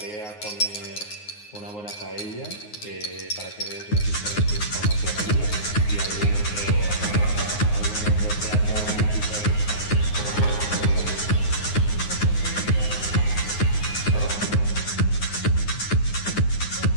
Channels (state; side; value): late; right; 9.6 ms